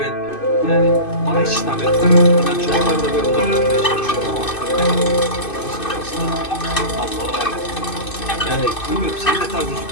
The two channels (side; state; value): right; late; 2.6 ms